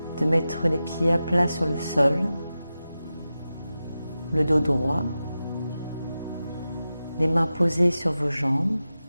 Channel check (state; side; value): inverted; both; correlation -0.93